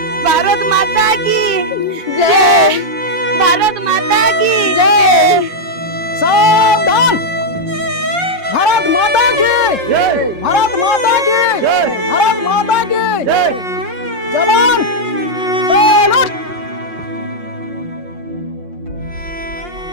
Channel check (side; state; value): left; late; 5.6 ms